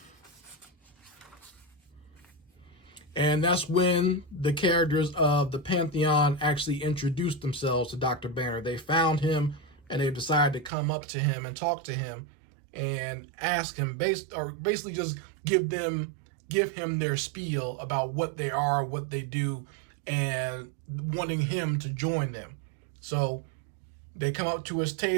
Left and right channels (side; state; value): left; drops out; at 10.7 s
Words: And that's when the characters of the Pantheon actually introduced themselves to Dr. Banner. They found him, and they decided to come up to him and talk to him and ask him, basically just give him their spiel about what they are, what they do, and wanting him to join them. So they come up to his